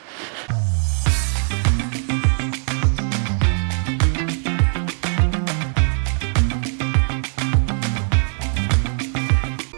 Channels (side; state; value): left; silent; 55 dB below the other